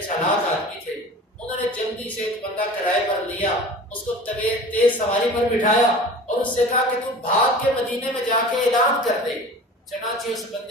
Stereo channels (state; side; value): normal; both; correlation 0.39